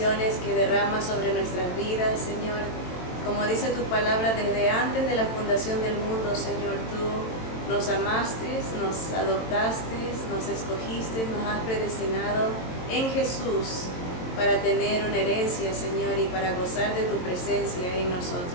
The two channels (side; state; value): right; late; 22 ms